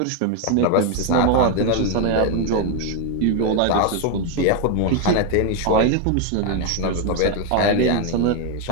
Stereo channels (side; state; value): both; different; correlation 0.01